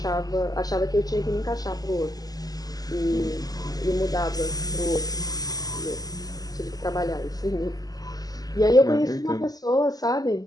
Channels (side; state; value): right; late; 0.18 ms